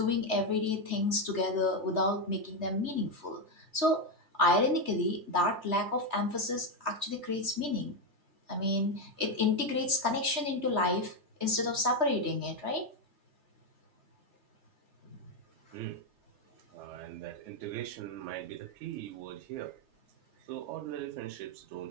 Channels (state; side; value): late; left; 3.3 ms